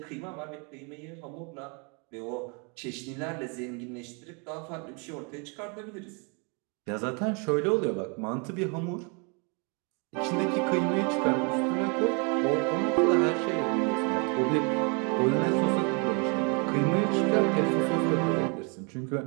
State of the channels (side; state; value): left; quieter; 34.2 dB